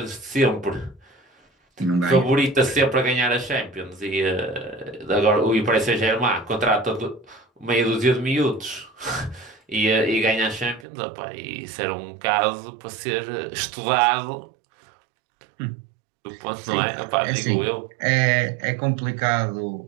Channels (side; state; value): left; drops out; at 10.9 s